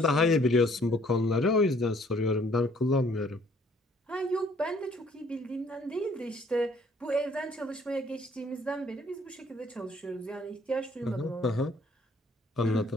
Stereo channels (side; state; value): both; normal; correlation 0.61